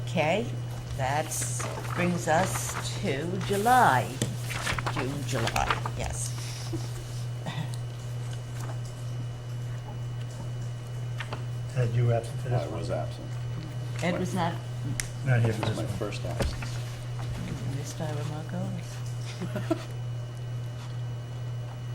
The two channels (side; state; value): both; identical; correlation 1.00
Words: Okay, that brings us to July. June, July, yes. Ed, you were absent for this I one? was absent. Ed was not, Not here This for is this my one. first absence. missed by Remarco.